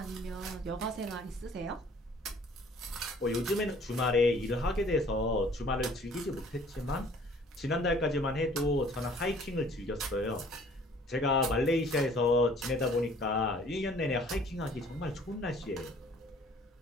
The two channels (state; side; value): normal; both; correlation 0.55